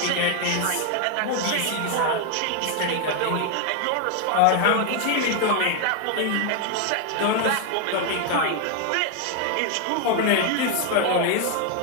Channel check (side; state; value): both; different; correlation 0.01